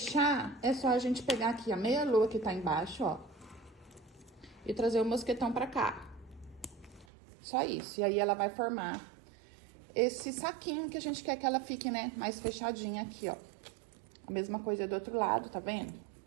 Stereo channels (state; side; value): drops out; left; at 7.1 s